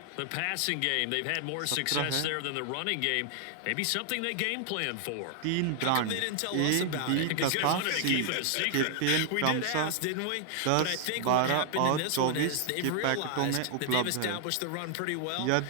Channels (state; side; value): different; both; correlation 0.00